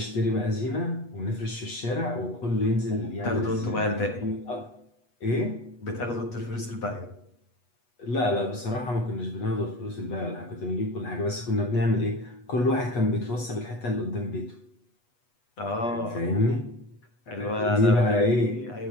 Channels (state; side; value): late; right; 8.3 ms